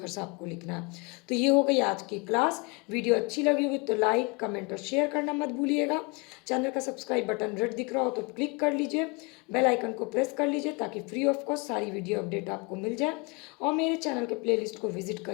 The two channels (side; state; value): right; quieter; 29.7 dB